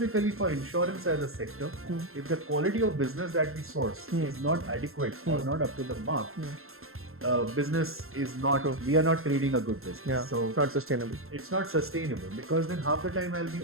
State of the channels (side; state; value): left; late; 0.61 ms